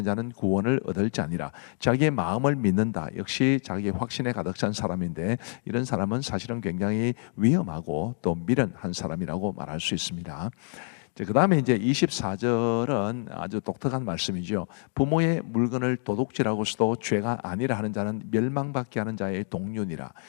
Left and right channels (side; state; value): right; silent; 56 dB below the other